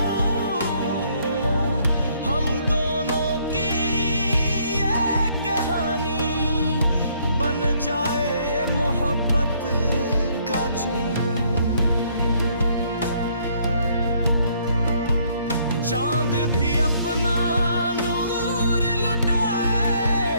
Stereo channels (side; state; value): both; inverted; correlation -0.66